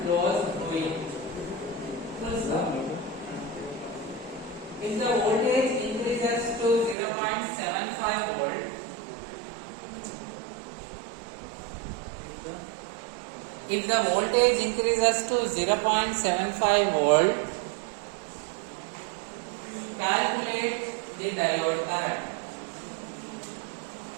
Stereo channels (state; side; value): drops out; left; at 7.0 s